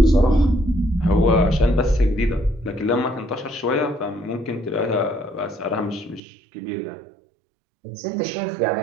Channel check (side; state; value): left; drops out; at 6.2 s